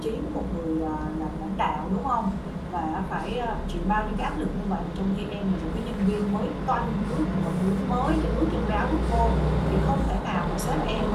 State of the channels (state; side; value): identical; both; correlation 1.00